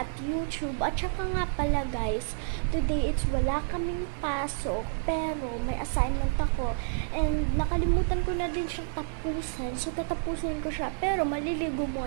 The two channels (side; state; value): left; silent; digital silence